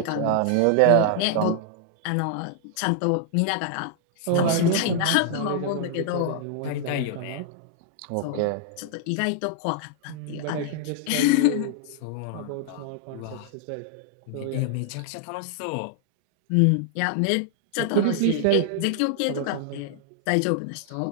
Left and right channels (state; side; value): different; both; correlation 0.00